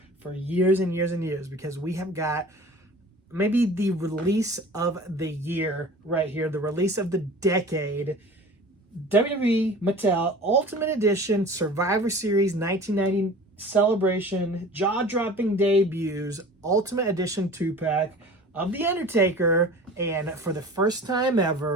years and years and years, because we have got maybe the release of the year right here, the release of the decade. WWE Mattel Ultimate Edition Survivor Series 1990 Celebration Jaw-Dropping Debuts Ultimate Edition 2-pack of The Undertaker. And for the first time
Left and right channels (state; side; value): normal; both; correlation 0.41